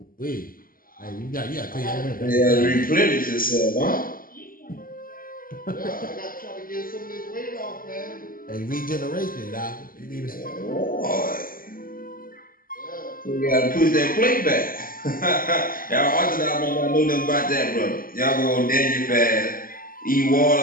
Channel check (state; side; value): late; right; 0.41 ms